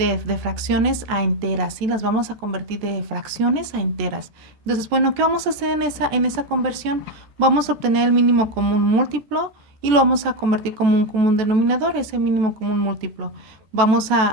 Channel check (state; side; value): late; left; 13 ms